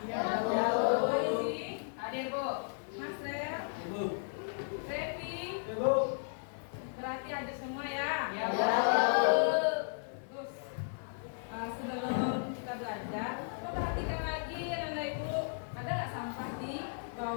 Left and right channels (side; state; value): right; silent; digital silence